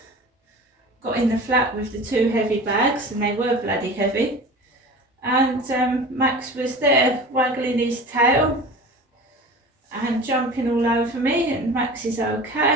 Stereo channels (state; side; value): normal; both; correlation 0.37